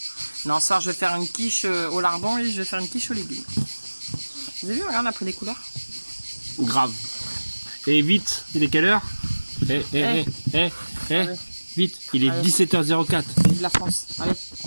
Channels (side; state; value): both; inverted; correlation -1.00